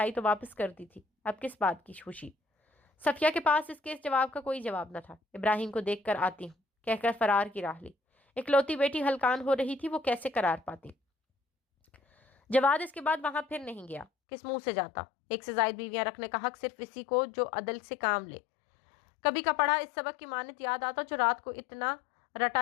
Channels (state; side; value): drops out; right; at 14.1 s